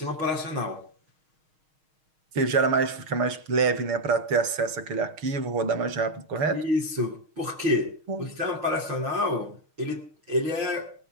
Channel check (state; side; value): late; left; 6.4 ms